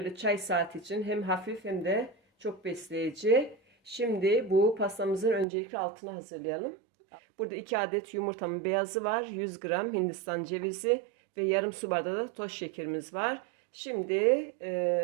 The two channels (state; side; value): drops out; left; at 5.5 s